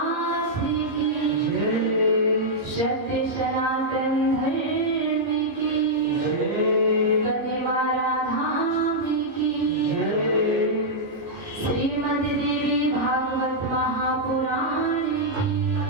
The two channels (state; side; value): late; left; 15 ms